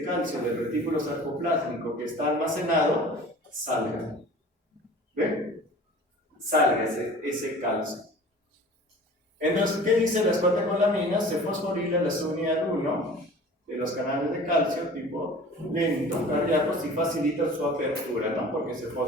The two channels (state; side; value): normal; both; correlation 0.43